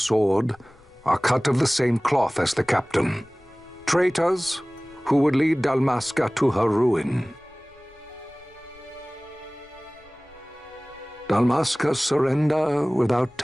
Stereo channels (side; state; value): left; noise; rumble, 29 dB below the sound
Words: are cut of the same cloth as the captain. Traitors who would lead Dalmasca to her ruin. Dalmasca's surrender without